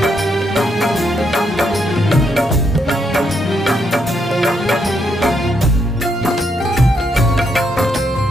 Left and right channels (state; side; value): normal; both; correlation 0.77